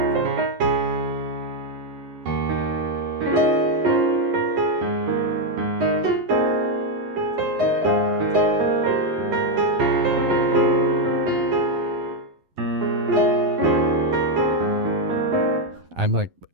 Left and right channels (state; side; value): late; left; 11 ms